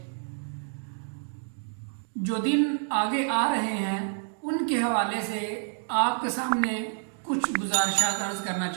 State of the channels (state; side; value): silent; left; digital silence